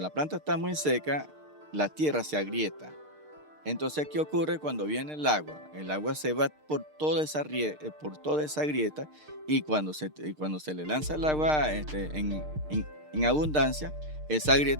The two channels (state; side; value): late; left; 6.6 ms